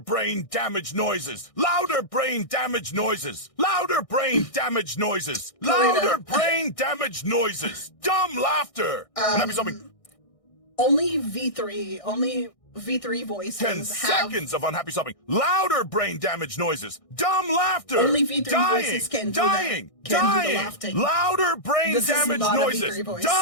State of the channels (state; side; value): late; right; 1.6 ms